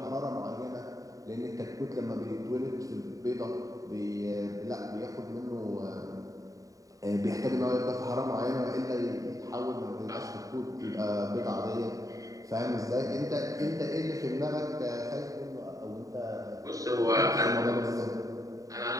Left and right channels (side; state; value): left; late; 0.16 ms